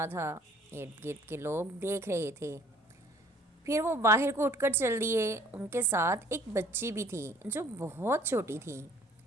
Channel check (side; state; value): both; normal; correlation 0.55